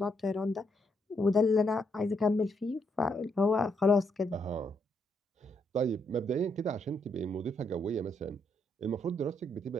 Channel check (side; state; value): both; normal; correlation 0.76